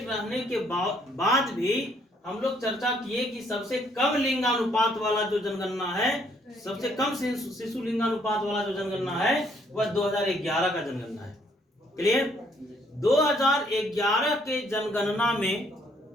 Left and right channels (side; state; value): both; normal; correlation 0.67